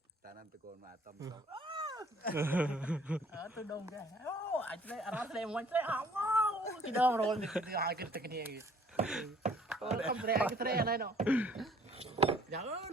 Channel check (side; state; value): both; normal; correlation 0.57